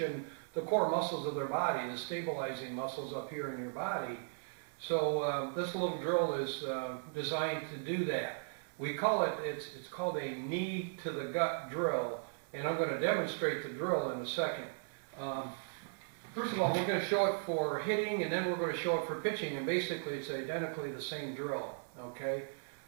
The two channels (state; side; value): silent; left; 53 dB below the other